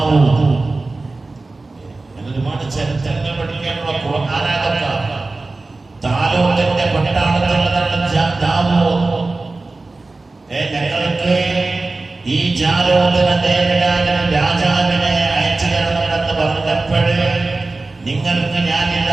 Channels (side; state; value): left; quieter; 3.4 dB